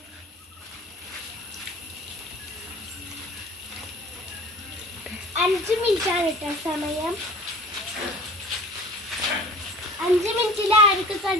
സമയം 5 മിനിറ്റിൽ ആർക്ക്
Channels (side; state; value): both; normal; correlation 0.44